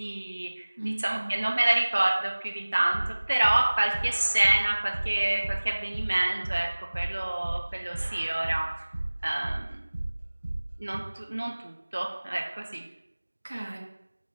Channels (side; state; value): both; inverted; correlation -1.00